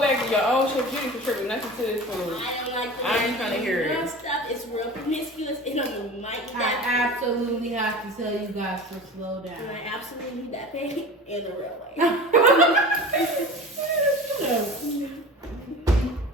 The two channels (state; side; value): normal; both; correlation 0.36